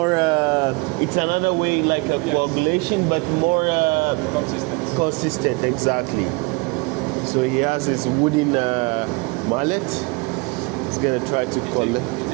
it's another way like a coagulation, but more Consistent. consistent, exactly. So he has his wooden mallet. He's gonna try to You collect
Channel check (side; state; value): left; quieter; 27.6 dB